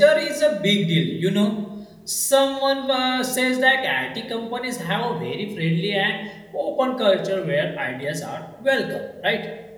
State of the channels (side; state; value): both; identical; correlation 1.00